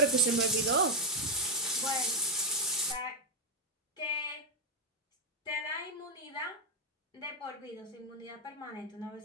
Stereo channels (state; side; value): normal; both; correlation 0.02